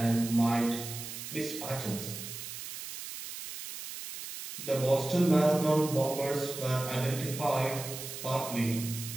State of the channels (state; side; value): noise; right; hiss, 9 dB below the sound